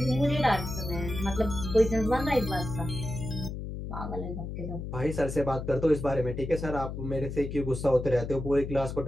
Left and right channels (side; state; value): left; noise; hum, 7 dB below the sound